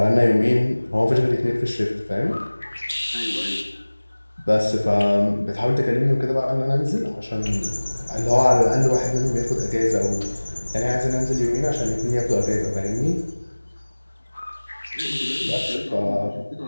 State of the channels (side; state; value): both; inverted; correlation -1.00